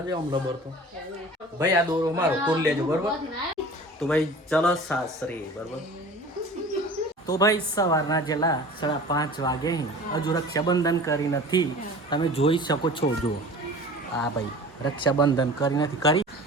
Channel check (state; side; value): normal; both; correlation 0.41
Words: જાય આમ લબર તો ભાઈ આ દોરો મારો તોડ લેજો બરોબર તો ભાઈ ચલો સાસરે બરોબર તો ભાઈ સવારના જેલા 5:30 વાગે હજુ રક્ષાબંધન કરી નથી તમે જોઈ શકો છો જો આ ભાઈ રક્ષાબંધન કરી નથી કરી